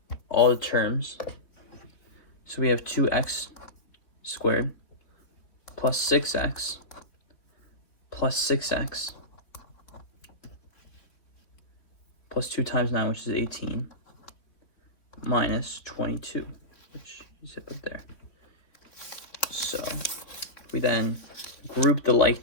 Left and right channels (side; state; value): right; late; 3.4 ms